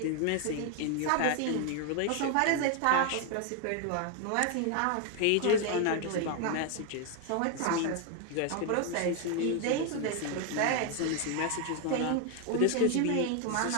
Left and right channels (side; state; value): both; different; correlation 0.01